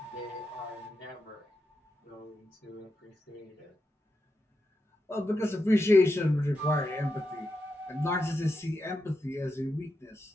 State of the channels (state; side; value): normal; both; correlation 0.86